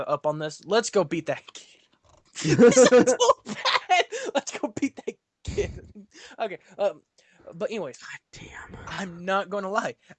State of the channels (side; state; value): both; identical; correlation 1.00